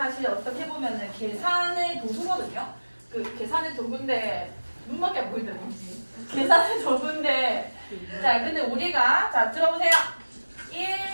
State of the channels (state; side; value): inverted; both; correlation -1.00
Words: 어떻게 보면은 계산의 도구거든요. 그 계산의 도구인데 눈밖에 안 보이더라고요. 계산의 도구인데 자, 근데 우리가 자 들어보세요.